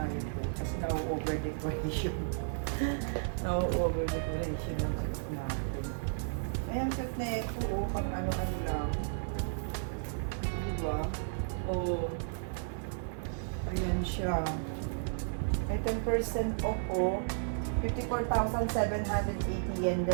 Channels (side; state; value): left; silent; digital silence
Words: yun, oh. Kasi na-over decoration. Na-over decoration yung cute natin. Ayan, cute na ito, oh. Pang ano-ano lang. Diba? Oh. Ayan siya. May 10% off, oh. 54,780 yen,